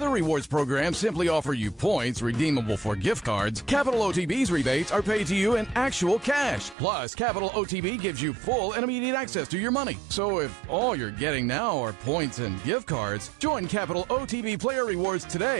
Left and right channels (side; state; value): left; drops out; at 6.8 s